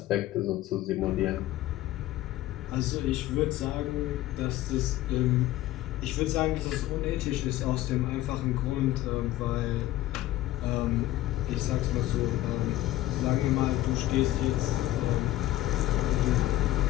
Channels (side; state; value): right; quieter; 15.3 dB